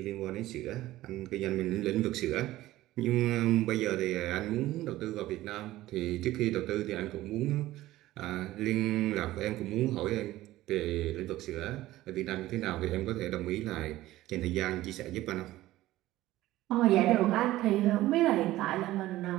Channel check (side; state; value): left; quieter; 16.0 dB